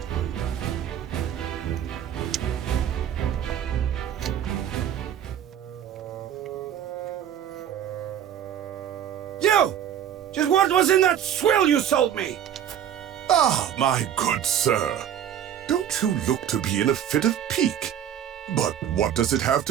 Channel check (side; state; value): left; quieter; 9.9 dB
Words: You! Just what was in that swill you sold me? Ah, my good sir. Don't you look to be in a fit of pique? But what does it have